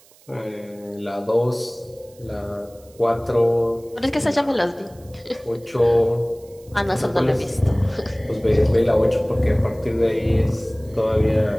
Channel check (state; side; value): noise; right; hiss, 28 dB below the sound